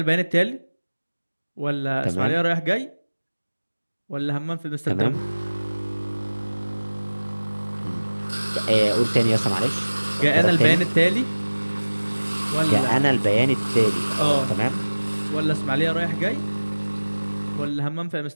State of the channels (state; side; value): inverted; both; correlation -1.00